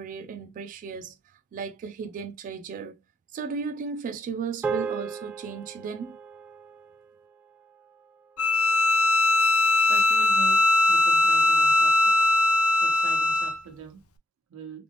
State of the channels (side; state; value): both; normal; correlation 0.78